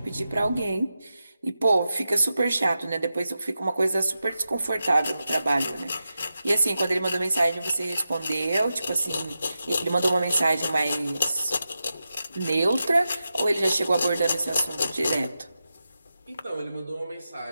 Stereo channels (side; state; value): both; inverted; correlation -0.90